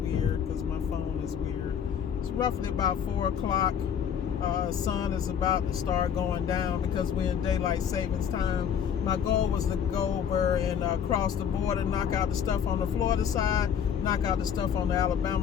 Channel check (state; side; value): quieter; right; 8.2 dB